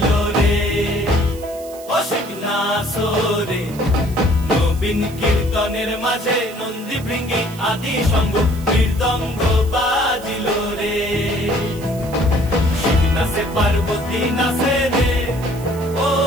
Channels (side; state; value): right; noise; hiss, 19 dB below the sound